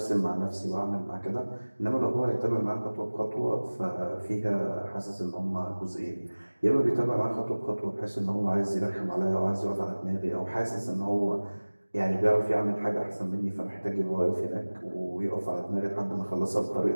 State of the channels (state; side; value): inverted; both; correlation -1.00